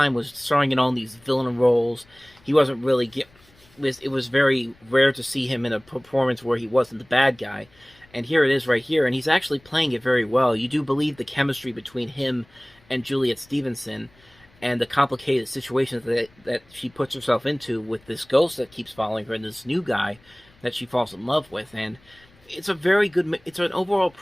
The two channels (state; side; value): noise; left; rumble, 29 dB below the sound